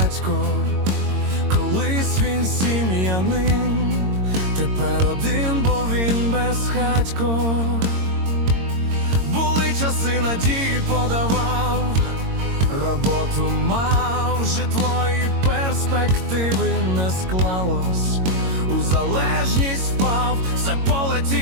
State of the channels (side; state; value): left; late; 22 ms